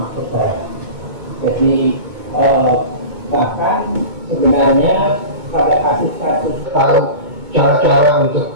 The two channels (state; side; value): late; left; 2.2 ms